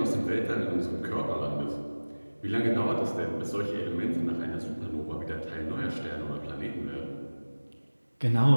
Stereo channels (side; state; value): both; inverted; correlation -1.00